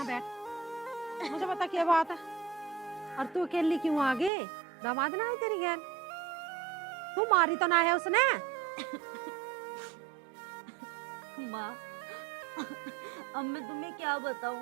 बैठ, मुझे बता क्या बात है। और तू अकेली क्यों आ गई? दामाद ना है तेरी गैर? तू मारी तो ना है उसने? माँ, अब मैं तुम्हें क्या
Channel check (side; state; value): left; drops out; at 4.3 s